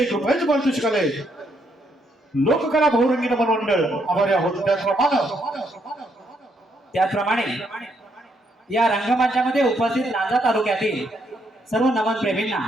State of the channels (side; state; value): both; normal; correlation 0.75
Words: रुपयाचं पारितोषिक आलंय. लोककला बहुरंगी नमन मंडळ आभारी आहोत. त्याचप्रमाणे या रंगमंचामध्ये उपस्थित लांजा तालुक्यातील सर्व नमन प्रेमींना,